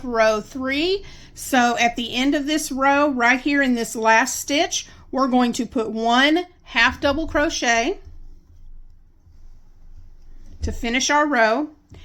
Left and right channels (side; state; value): both; identical; correlation 1.00